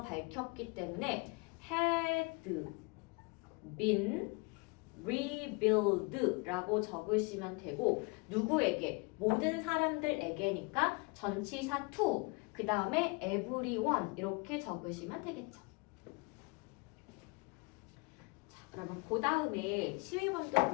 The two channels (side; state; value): right; quieter; 29.7 dB